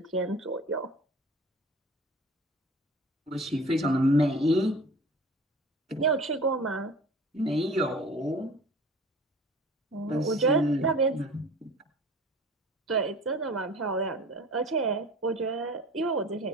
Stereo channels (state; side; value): normal; both; correlation 0.42